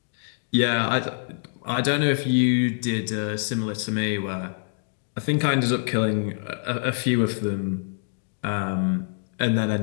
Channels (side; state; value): right; silent; digital silence